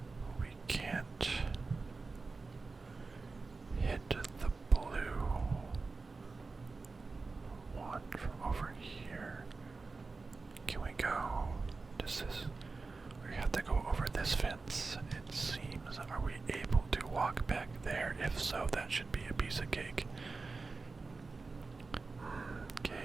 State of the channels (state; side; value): quieter; left; 4.0 dB